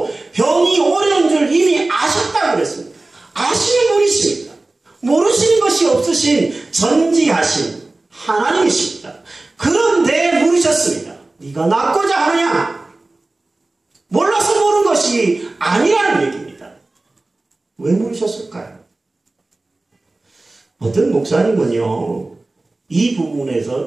병이 오래된 줄 이미 아셨다고 그랬습니다. 아시는 분이십니다. 모르시는 것이 없으신 전지하신 하나님이십니다. 그런데 물으셨습니다. 네가 낫고자 하느냐? 몰라서 모른 것이 아니라는 얘기입니다. 왜 물으셨을까요? 어떤 목사님은요, 이 부분에서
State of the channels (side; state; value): left; quieter; 3.0 dB